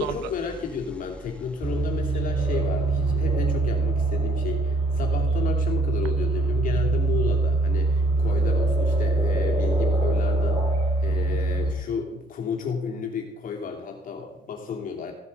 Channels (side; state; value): both; normal; correlation 0.63